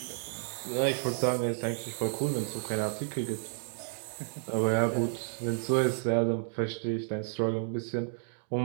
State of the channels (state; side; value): silent; left; digital silence